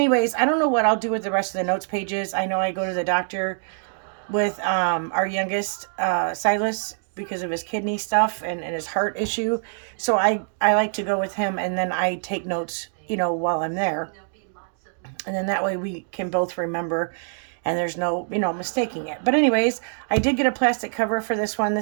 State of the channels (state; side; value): silent; left; digital silence